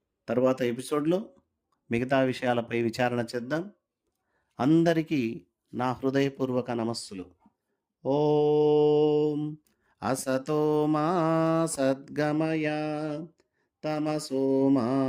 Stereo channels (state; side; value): identical; both; correlation 1.00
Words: తర్వాత ఎపిసోడ్లో మిగతా విషయాలపై విచారణ చేద్దాం. అందరికీ నా హృదయపూర్వక నమస్సులు. ఓం అసతో మా సద్గమయ, తమసో మా